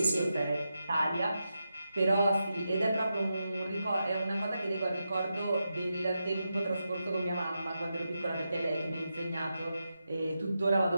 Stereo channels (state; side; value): inverted; both; correlation -0.88